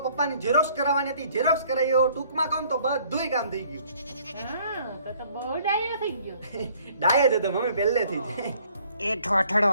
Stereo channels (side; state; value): both; inverted; correlation -0.60